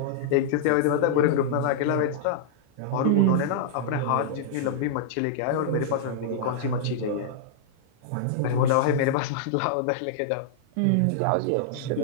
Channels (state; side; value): different; both; correlation -0.02